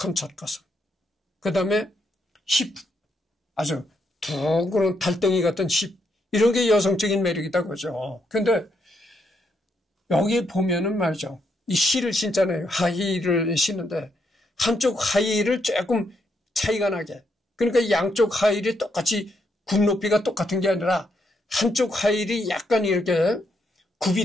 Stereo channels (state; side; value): normal; both; correlation 0.78